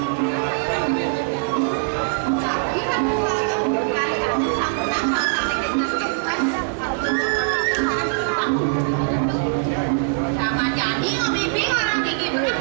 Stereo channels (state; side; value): silent; left; digital silence